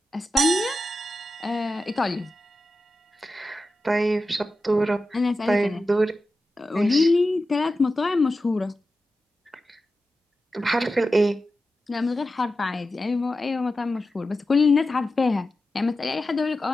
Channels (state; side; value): normal; both; correlation 0.92